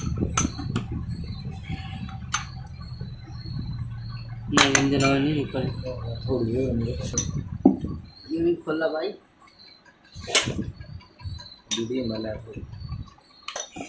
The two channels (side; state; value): both; identical; correlation 1.00